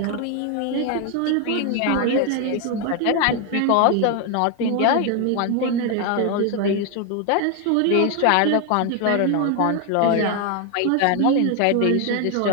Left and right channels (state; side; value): different; both; correlation 0.01